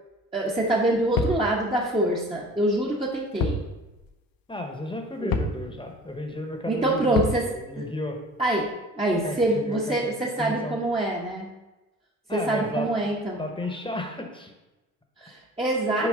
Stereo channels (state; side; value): normal; both; correlation 0.45